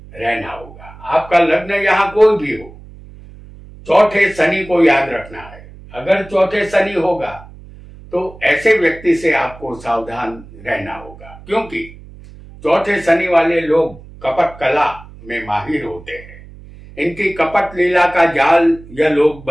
रहना होगा। आपका लग्न यहां कोई भी हो, चौथे शनि को याद रखना है। अगर चौथे शनि होगा तो ऐसे व्यक्ति से आपको सावधान रहना होगा, क्योंकि चौथे शनि वाले लोग कपट कला में माहिर होते हैं। इनकी कपट लीला का जाल यह लोग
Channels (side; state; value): right; noise; hum, 19 dB below the sound